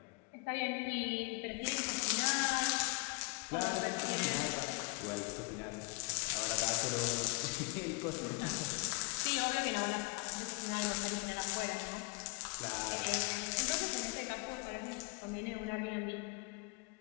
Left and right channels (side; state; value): right; quieter; 28.5 dB